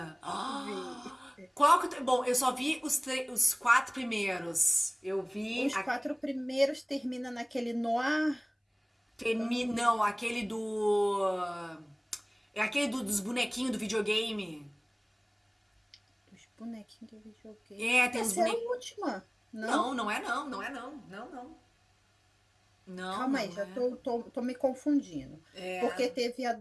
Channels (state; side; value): identical; both; correlation 1.00